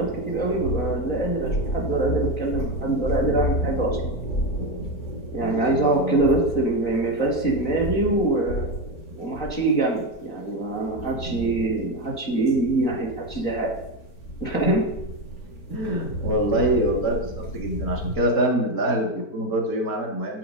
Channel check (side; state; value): right; late; 4.4 ms